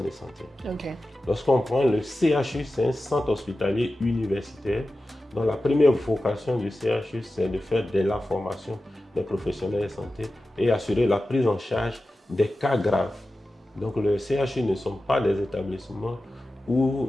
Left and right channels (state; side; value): normal; both; correlation 0.94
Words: de santé. Lorsqu'on prend le CHU, c'est un centre hospitalier universitaire dont la première vocation du CHU, c'est de faire de la formation des professionnels de santé et assurer la prise en charge des cas graves. Donc le CHU ne sont pas des établissements où